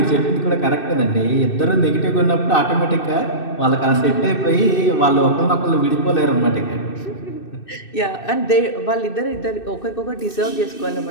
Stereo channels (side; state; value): right; late; 2.6 ms